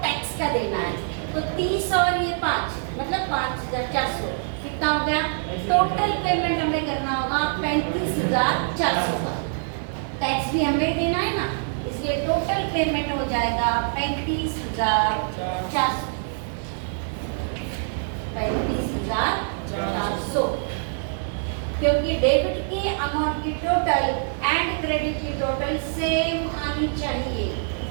टैक्स का देना है। तो 30 और ये 5 मतलब 5,400 कितना हो गया, टोटल पेमेंट हमें करना होगा 35,400 का। टैक्स भी हमें देना है ना, इसलिए टोटल पेमेंट हो जाएगा 35,400, 35,400। क्योंकि डेबिट की अमाउंट की टोटल एंड क्रेडिट की टोटल सेम आनी चाहिए।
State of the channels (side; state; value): left; silent; digital silence